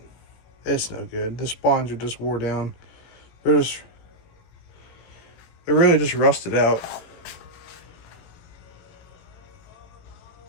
It's no good. The spawns are just wore down. They're really just rusted out.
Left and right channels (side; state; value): right; late; 18 ms